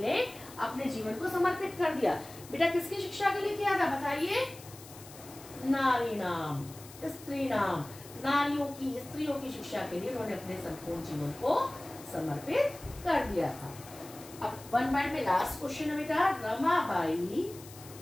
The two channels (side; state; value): left; noise; hiss, 18 dB below the sound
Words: अपने जीवन को समर्पित कर दिया? बेटा किसकी शिक्षा के लिए किया था? बताइए। नारी नाम, स्त्री नाम, नारियों की, स्त्रियों की शिक्षा के लिए उन्होंने अपने संपूर्ण जीवन को समर्पित कर दिया था। अब वन वर्ड में लास्ट क्वेश्चन है बेटा, रमाबाई